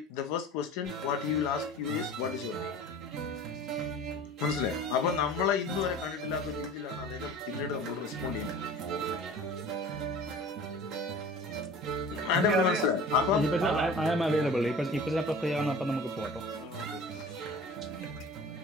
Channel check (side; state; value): both; normal; correlation 0.41